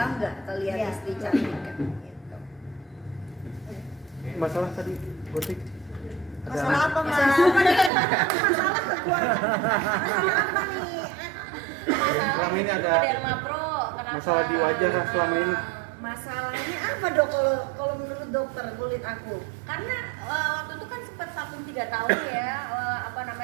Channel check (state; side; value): drops out; left; at 7.9 s